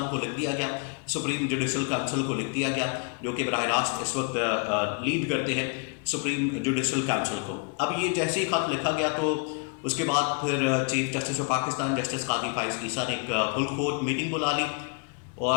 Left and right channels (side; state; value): right; quieter; 36.3 dB